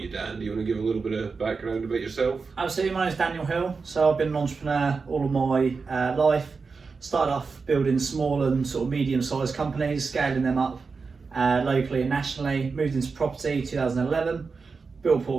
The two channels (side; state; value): left; quieter; 4.7 dB